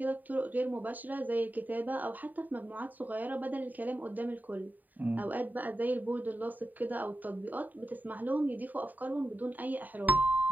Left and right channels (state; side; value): late; left; 0.085 ms